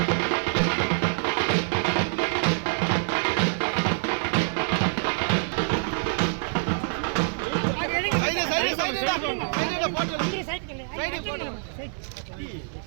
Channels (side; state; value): left; silent; digital silence